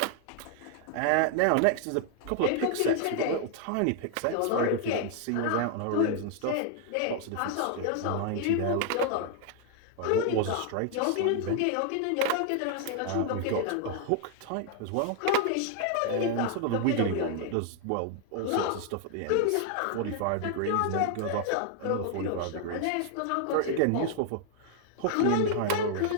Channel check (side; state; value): both; different; correlation 0.00